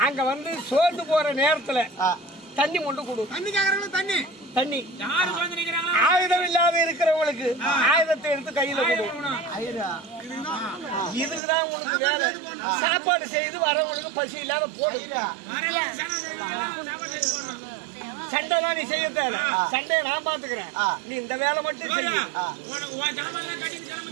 அங்க வந்து சோர்ந்து போற நேரத்துல தண்ணி கொண்டு கொடு. தண்ணி தண்ணி ஆயுதம் இல்லாத இருக்கிறவங்களுக்கு ஆயுதத்தை எடுத்து கையில கொடு. இதுக்குதான் உனக்கு வேலை. சாப்பாடு செய்து வரவங்களுக்கு பசி இல்லாத போடு. சண்டை தான் நீ செய்ய தேவை. சண்டையை நான் பாத்துக்கிறேன். நீ இந்த வேலை மட்டும் செய்ய.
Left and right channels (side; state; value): left; drops out; at 11.4 s